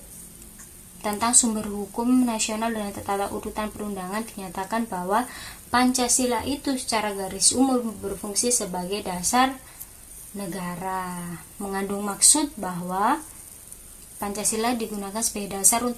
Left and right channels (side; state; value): both; identical; correlation 1.00